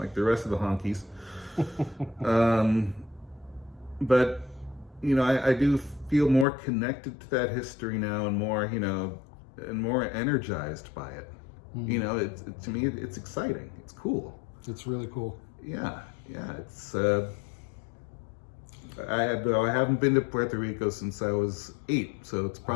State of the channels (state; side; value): drops out; right; at 6.5 s